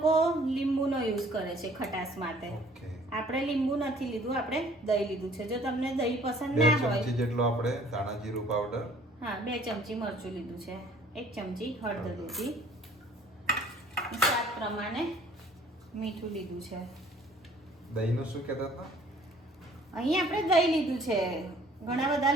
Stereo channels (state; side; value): normal; both; correlation 0.56